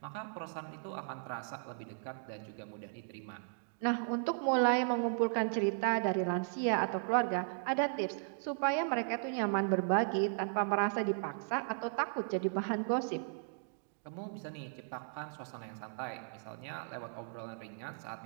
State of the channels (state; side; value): silent; left; digital silence